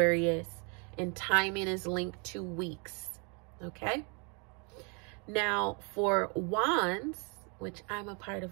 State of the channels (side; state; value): left; quieter; 34.7 dB